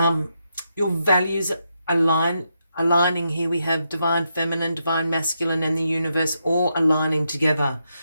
values aligning here. We have divine feminine, divine masculine, and the universe all aligning together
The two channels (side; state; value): both; inverted; correlation -0.82